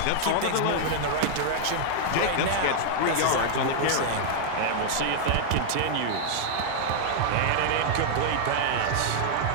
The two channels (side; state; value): both; different; correlation -0.01